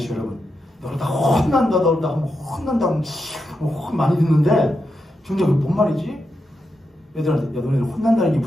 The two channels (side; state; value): both; normal; correlation 0.86